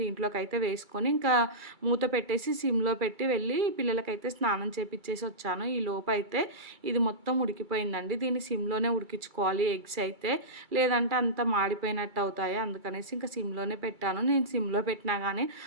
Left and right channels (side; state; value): left; late; 2.3 ms